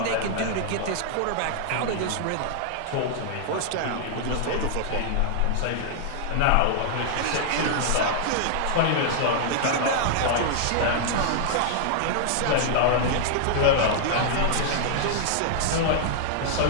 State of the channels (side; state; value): both; different; correlation -0.01